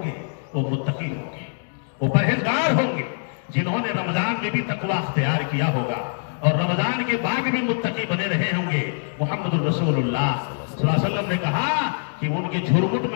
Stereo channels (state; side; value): silent; right; digital silence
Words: گے وہ متقی ہوں گے، وہ پرہیزگار ہوں گے، جنہوں نے رمضان میں بھی تقویٰ اختیار کیا ہوگا اور رمضان کے بعد بھی متقی بنے رہے ہوں گے۔ محمد الرسول اللہ صلی اللہ علیہ وسلم نے کہا کہ ان کے جھرمٹ